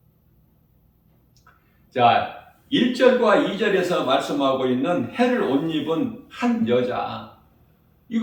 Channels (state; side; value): identical; both; correlation 1.00